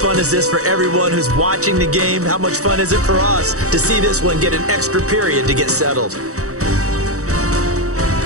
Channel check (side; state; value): left; late; 0.65 ms